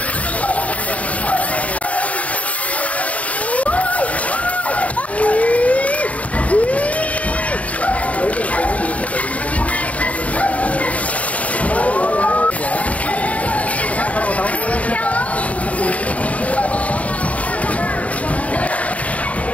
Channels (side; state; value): right; late; 0.068 ms